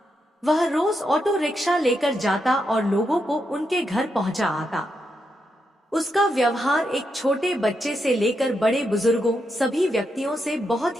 वह रोज ऑटो रिक्शा लेकर जाता और लोगों को उनके घर पहुंचा आता। उसका व्यवहार एक छोटे बच्चे से लेकर बड़े बुजुर्गों सभी व्यक्तियों से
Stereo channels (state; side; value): normal; both; correlation 0.83